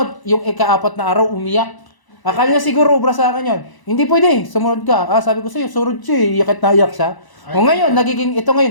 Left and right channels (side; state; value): right; late; 1.0 ms